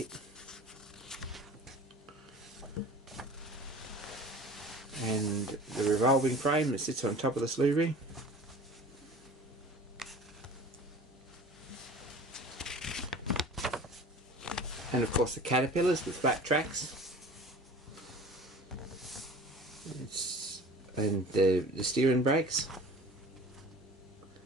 And the revolving frame that sits on top of the slew ring. And of course the caterpillars with flat tracks. And the steering brakes.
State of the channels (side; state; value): both; normal; correlation 0.42